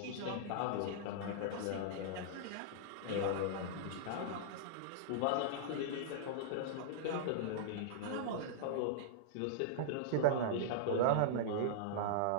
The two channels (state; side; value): different; both; correlation -0.02